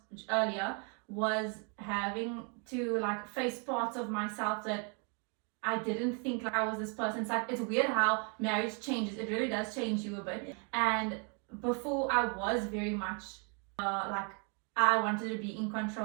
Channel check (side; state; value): left; quieter; 37.4 dB